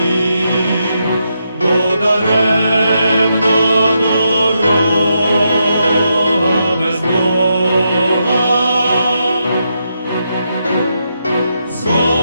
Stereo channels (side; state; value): both; inverted; correlation -0.82